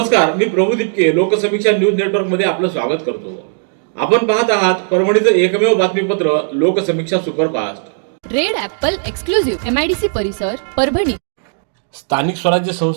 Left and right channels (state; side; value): silent; left; digital silence